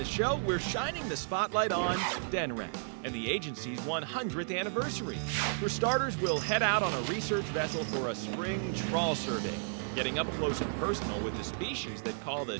show, we're shining the spotlight on Denrec and the agency's 100th anniversary. For starters, we'll head out on a research vessel for a spring trawl survey, getting up close and personal with the species that call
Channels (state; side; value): silent; left; digital silence